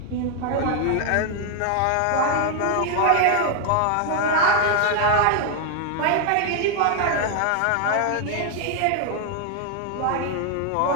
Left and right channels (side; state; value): both; different; correlation 0.00